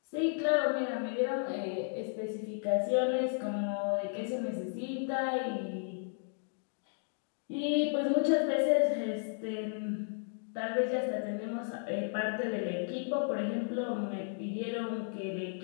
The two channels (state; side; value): silent; right; digital silence